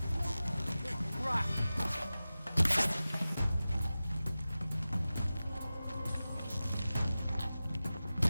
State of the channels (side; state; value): both; inverted; correlation -0.96